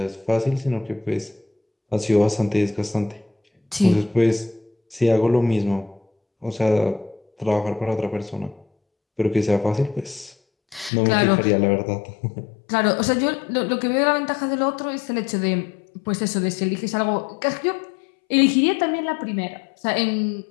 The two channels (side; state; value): right; drops out; at 10.9 s